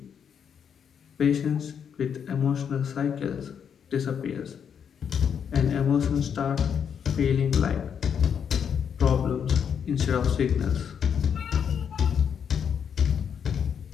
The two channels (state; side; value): quieter; right; 7.7 dB